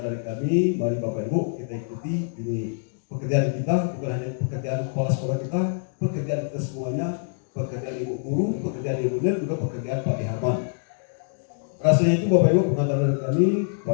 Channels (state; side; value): silent; right; digital silence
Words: dari kami. Mari Bapak Ibu kita ikuti ini pekerjaan kita, bukan hanya pekerjaan kepala sekolah kita, pekerjaan kita semuanya, pekerjaan Ibu Guru, pekerjaan Ibu Nel, juga pekerjaan Pak Darman. Rasanya itu Bapak Ibu pengantar dari kami